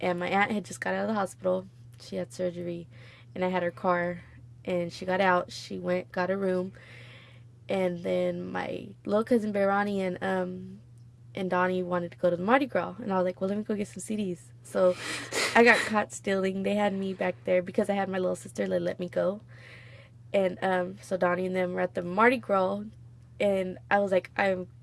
my aunt had just got out of the hospital, she had surgery, and I had her car, and she got out. She went, got a room, and then my little cousin Veronica and Donnie wanted to go to the Mardi Gras, and I was like, well, let me go get some CDs. So I got caught stealing. They had me back there because I had my little sister. They let me go, and so Donnie and them were at the Mardi Gras, and I was like, I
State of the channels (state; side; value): identical; both; correlation 1.00